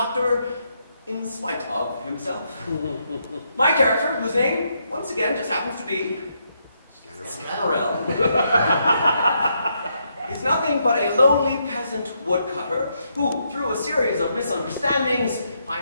in spite of himself. My character, whose name, once again, just happens to be Scannerell, is nothing but a lowly peasant woodcutter who, through a series of misunderstandings,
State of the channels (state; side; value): inverted; both; correlation -0.78